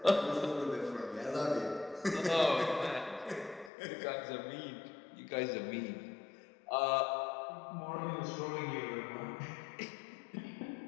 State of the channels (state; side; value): drops out; right; at 3.7 s